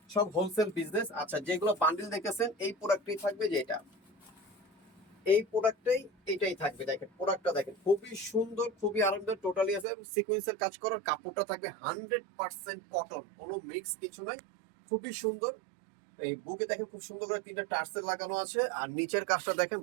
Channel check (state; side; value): drops out; left; at 9.9 s